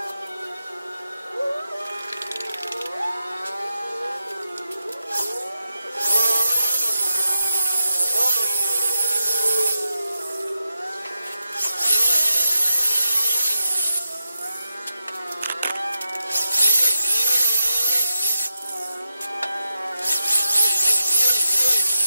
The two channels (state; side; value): inverted; both; correlation -0.87